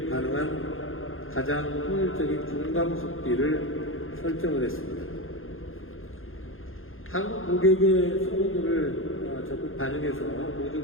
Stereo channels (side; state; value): right; late; 0.60 ms